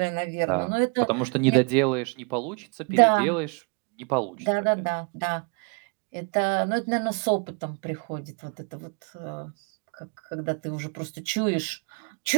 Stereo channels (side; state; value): left; quieter; 35.8 dB